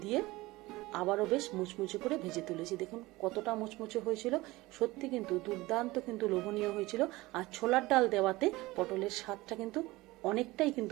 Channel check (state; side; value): quieter; left; 20.1 dB